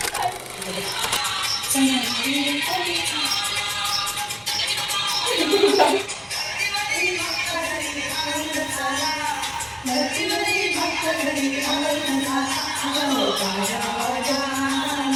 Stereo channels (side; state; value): both; identical; correlation 1.00